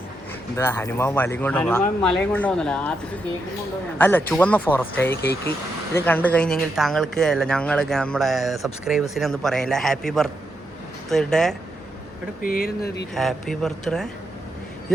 എന്താ? ഹനുമാൻ മലയും കൊണ്ടുപോകുന്നില്ല. അല്ല, ചുവന്ന ഫോറസ്റ്റ് കേക്ക്. ഇത് കണ്ടു കഴിഞ്ഞെങ്കിൽ താങ്കൾക്ക് അല്ല ഞങ്ങൾ നമ്മുടെ സബ്സ്ക്രൈബേഴ്സിനെ ഒന്നും പറയാനില്ല. Happy birthday. Happy birthday.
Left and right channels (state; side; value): normal; both; correlation 0.82